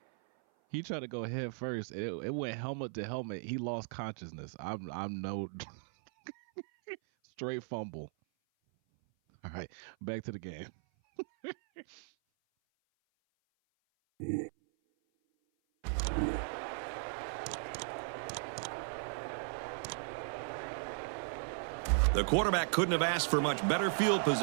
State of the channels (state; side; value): silent; left; 53 dB below the other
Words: He tried to go head first. It went helmet to helmet. He lost consciousness. I'm no straight fumble. All right, back to the game. The quarterback couldn't have asked for much better field